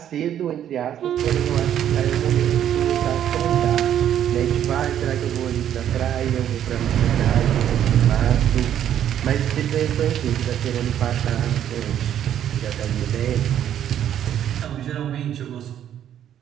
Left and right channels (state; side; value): quieter; left; 10.4 dB